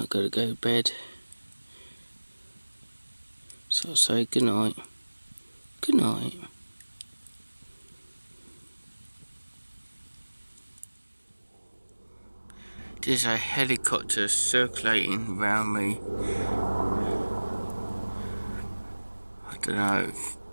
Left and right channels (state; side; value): inverted; both; correlation -1.00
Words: got to go to bed. So I'll say good night. Good night. There's a helicopter circulating around me. I don't know